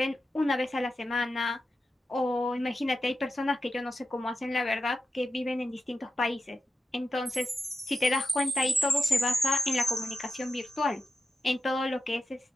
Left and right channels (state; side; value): normal; both; correlation 0.89